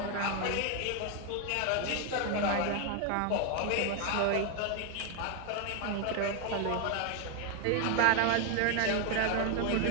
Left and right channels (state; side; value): different; both; correlation 0.01